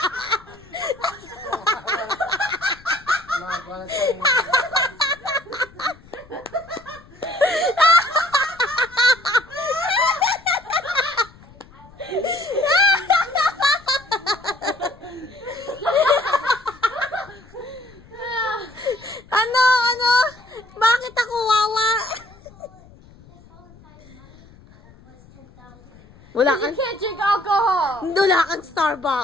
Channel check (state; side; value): noise; left; rumble, 24 dB below the sound